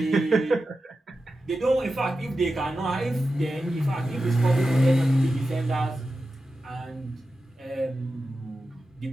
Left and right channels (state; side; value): normal; both; correlation 0.91